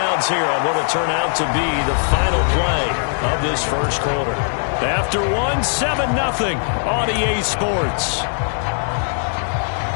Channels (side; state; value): right; silent; 63 dB below the other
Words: here on what will turn out to be the final play of this first quarter. After 1, 7-0 on EA Sports.